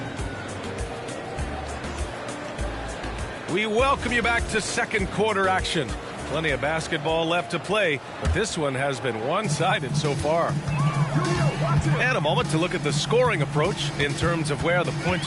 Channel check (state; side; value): identical; both; correlation 1.00